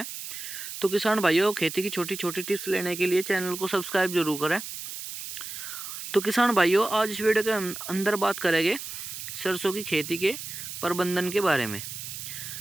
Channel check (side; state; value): right; noise; hiss, 8 dB below the sound